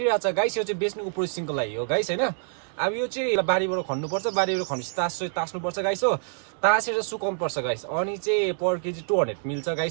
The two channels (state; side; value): silent; left; digital silence